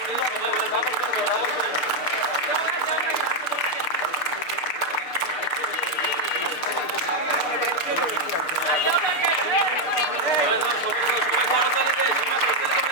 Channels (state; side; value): late; right; 6.7 ms